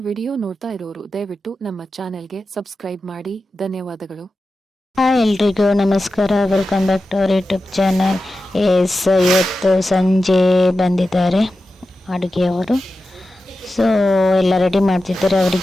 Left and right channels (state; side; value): normal; both; correlation 0.92